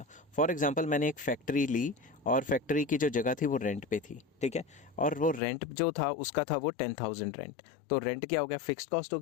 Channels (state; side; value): drops out; right; at 5.4 s